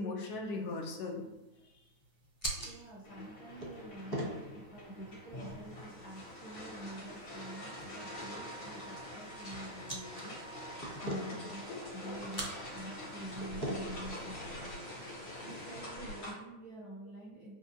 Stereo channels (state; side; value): late; right; 9.3 ms